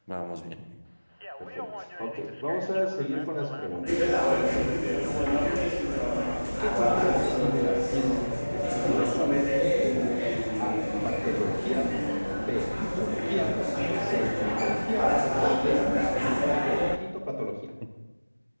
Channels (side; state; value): both; inverted; correlation -1.00